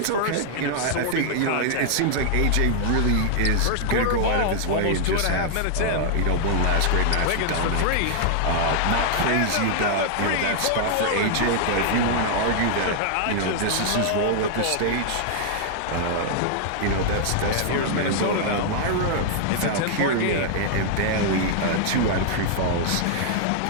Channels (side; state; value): both; different; correlation -0.01